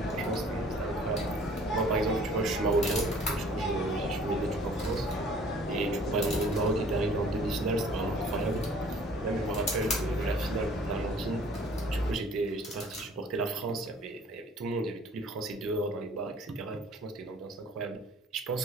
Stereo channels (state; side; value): normal; both; correlation 0.53